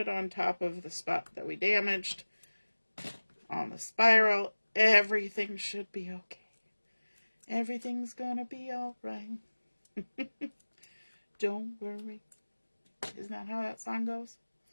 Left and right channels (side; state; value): both; inverted; correlation -1.00